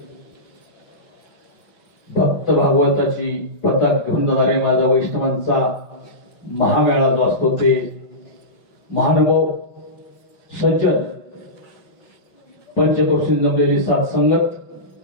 भक्त भागवताची पताक घेऊन जाणारे माझा वैष्णवांचा महामेळा जो असतो ते महानुभाव, सज्जन, पंचकोशी जमलेली सात संगत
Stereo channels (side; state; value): right; late; 5.7 ms